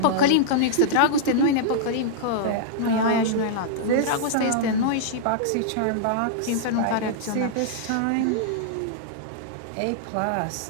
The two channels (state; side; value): different; both; correlation -0.02